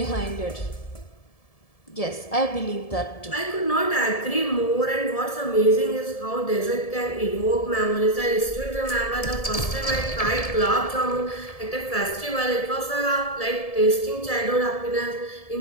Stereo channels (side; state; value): right; late; 1.7 ms